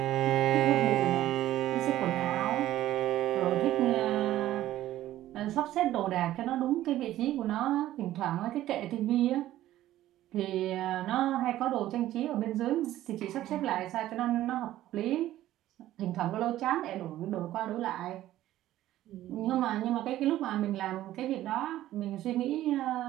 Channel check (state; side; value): quieter; left; 14.0 dB